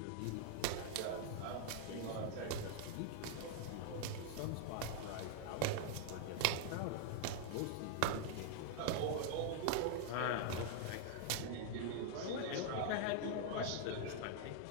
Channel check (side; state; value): both; different; correlation 0.00